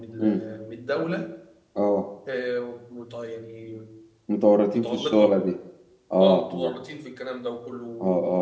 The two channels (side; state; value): both; identical; correlation 1.00